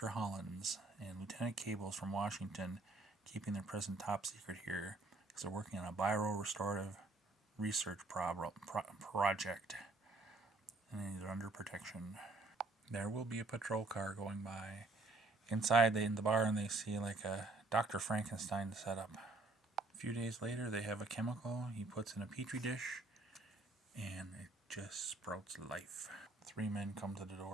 Hollands and Lieutenant Cables from Washington, keeping their present top secret here because they're working on a bio-restorative research project, and they're under protection. There will be a patrol car going by. Inside in the barn they see like a Dr. Frankenstein setup. A few days later they have a chemical he puts in a petri dish and it just sprouts life. 3 men come to the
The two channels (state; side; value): quieter; left; 3.2 dB